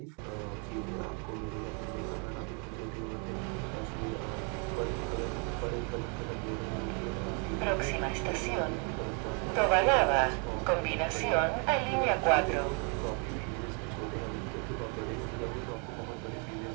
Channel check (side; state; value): left; quieter; 37.0 dB